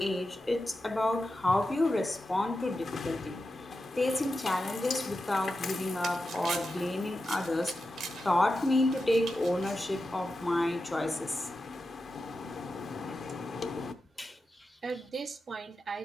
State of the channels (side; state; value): both; normal; correlation 0.91